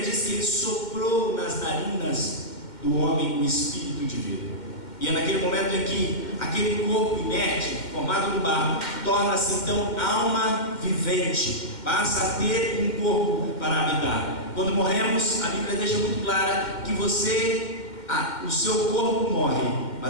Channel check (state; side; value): late; right; 2.1 ms